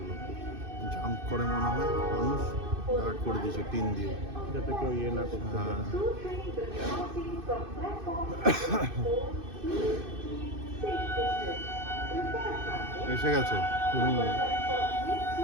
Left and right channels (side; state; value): left; late; 2.6 ms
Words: জাম্প করে মনে হয় মানুষ, গার্ড করে দিয়েছে টিন দিয়ে, যাতে কেউ ইয়ে না করতে পারে। এসে গেছে।